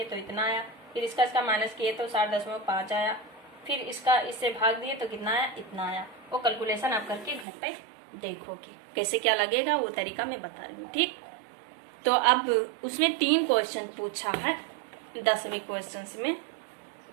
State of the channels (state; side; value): drops out; left; at 7.5 s